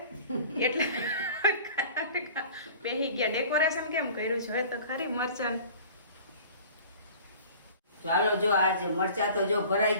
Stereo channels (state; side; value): inverted; both; correlation -0.44